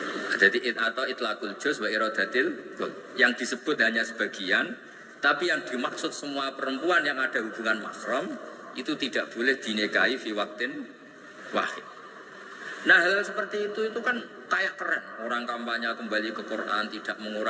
Jadi atau itlaqul juz wa iradatil kul. Yang disebut hanya sebagian, tapi yang dimaksud semua perempuan yang ada hubungan mahram itu tidak boleh dinikahi fi waqtin wahid. Nah, hal seperti itu kan kayak keren. Orang kampanye kembali ke Quran, tidak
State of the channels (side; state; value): both; identical; correlation 1.00